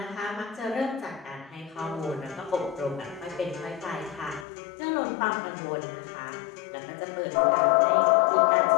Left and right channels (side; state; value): right; drops out; at 4.5 s